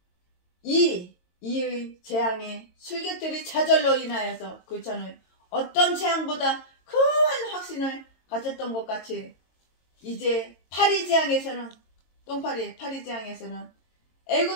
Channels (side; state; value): right; late; 22 ms